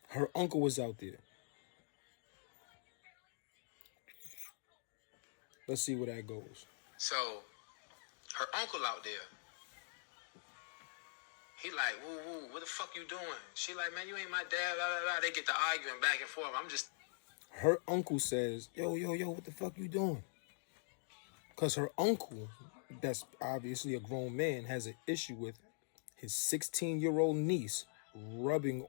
Her uncle was out there. Let's see where that goes. So, her uncle out there. He like, woo, woo, what the fuck you doing? She like, man, you ain't my dad, blah, blah, blah. They get to arguing back and forth. I'm just... Her uncle says, yo, what the fuck you doing? Because her uncle, that's obviously a grown man, has an issue with his 16-year-old niece rubbing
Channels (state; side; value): silent; right; digital silence